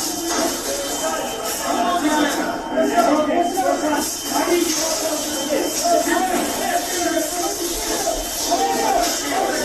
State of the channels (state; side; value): identical; both; correlation 1.00